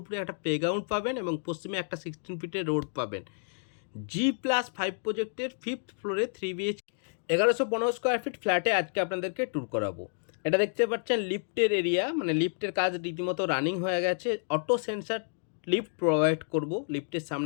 একটা প্লেগ্রাউন্ড পাবেন এবং পশ্চিমে একটা 16 ফিটের রোড পাবেন। G+5 প্রজেক্টের 5th ফ্লোরে 3BH 1115 স্কোয়ার ফিট ফ্ল্যাটে আজকে আপনাদেরকে ট্যুর করাবো। এটা দেখতে পাচ্ছেন লিফটের এরিয়া, মানে লিফটের কাজ রীতিমতো রানিং হয়ে গেছে। অটো সেন্সার লিফট প্রোভাইড করব। লিফটের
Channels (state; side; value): silent; right; digital silence